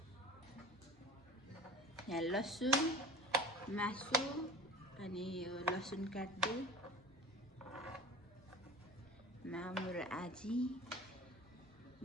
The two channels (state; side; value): normal; both; correlation 0.39